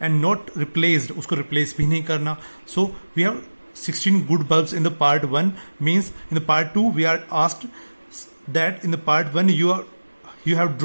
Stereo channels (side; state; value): both; inverted; correlation -1.00